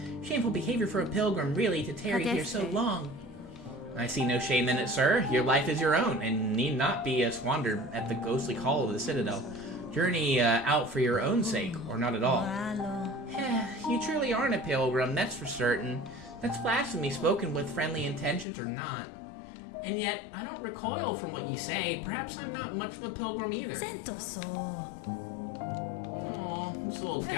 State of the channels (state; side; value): drops out; right; at 18.4 s